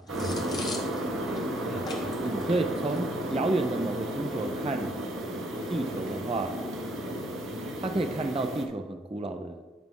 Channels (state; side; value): normal; both; correlation 0.67